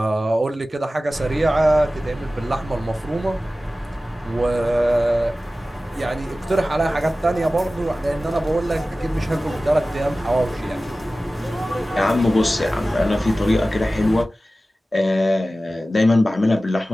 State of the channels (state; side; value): normal; both; correlation 0.96